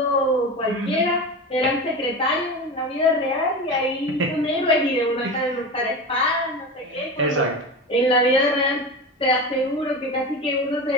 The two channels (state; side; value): normal; both; correlation 0.27